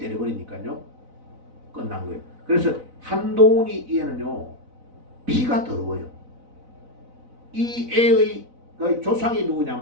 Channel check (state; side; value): late; left; 4.0 ms